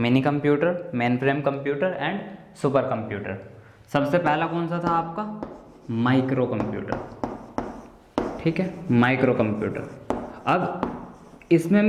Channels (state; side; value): identical; both; correlation 1.00